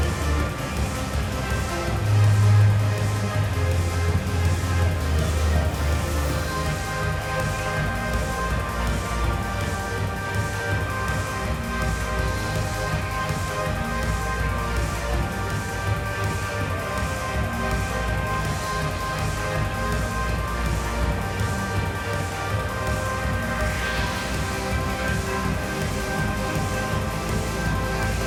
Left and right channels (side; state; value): both; identical; correlation 1.00